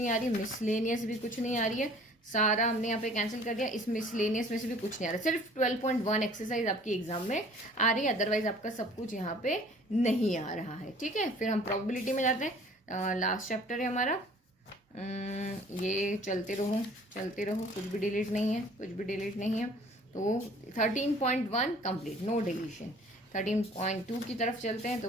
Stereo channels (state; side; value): normal; both; correlation 0.52